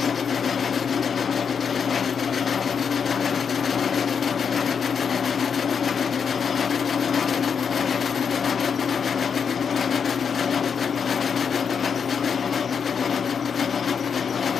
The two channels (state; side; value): quieter; right; 6.6 dB